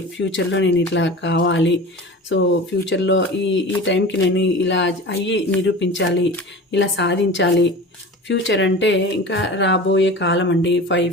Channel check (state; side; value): normal; both; correlation 0.35